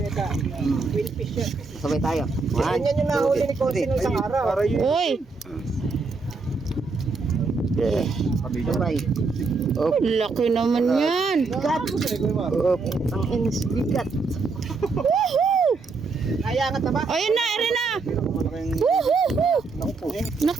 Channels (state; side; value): quieter; left; 4.2 dB